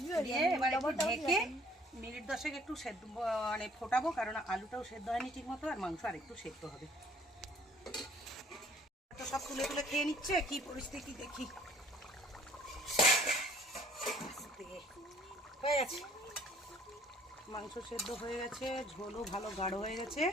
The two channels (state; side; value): normal; both; correlation 0.58